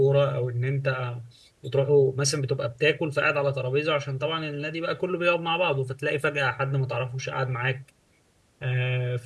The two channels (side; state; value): both; identical; correlation 1.00